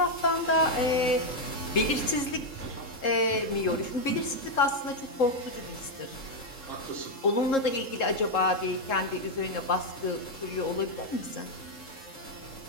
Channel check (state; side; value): late; right; 3.7 ms